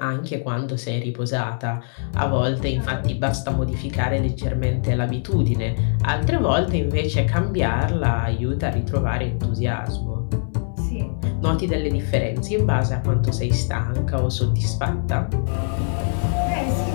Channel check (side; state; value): right; silent; 61 dB below the other